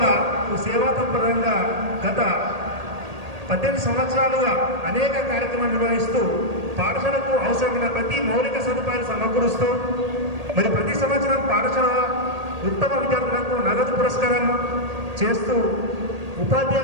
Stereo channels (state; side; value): late; left; 1.8 ms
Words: సేవా తత్పరంగా గత 18 సంవత్సరాలుగా అనేక కార్యక్రమాలు నిర్వహిస్తూ పాఠశాలకు అవసరమైన ప్రతి మౌలిక సదుపాయాలు సమకూరుస్తూ మరి ప్రతి సంవత్సరం పాఠశాల ఉత్తమ విద్యార్థులకు నగదు పురస్కారం చేస్తూ